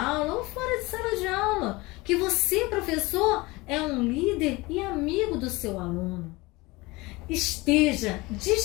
ou fora de sala de aula, que você, professor, é um líder e amigo do seu aluno. Esteja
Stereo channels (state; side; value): quieter; right; 22.7 dB